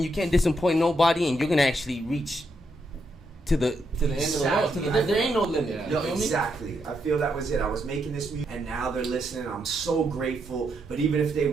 you can't disappoint nobody, and you're gonna actually reach to the end of the world. Exactly. There ain't no limit. Yeah. You Yo, feel me? exactly. I feel that was it. I was making this music, and now they're listening. I'm so grateful. But even if they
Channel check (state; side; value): normal; both; correlation 0.80